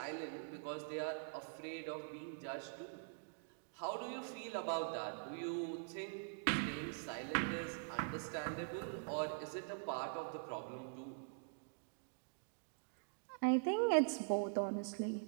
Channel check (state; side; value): silent; left; digital silence